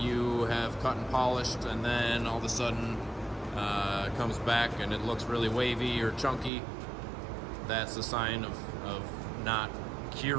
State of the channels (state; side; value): drops out; left; at 6.5 s